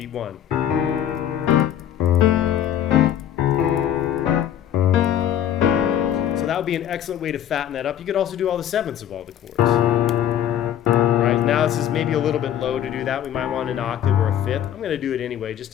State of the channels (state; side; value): quieter; right; 10.6 dB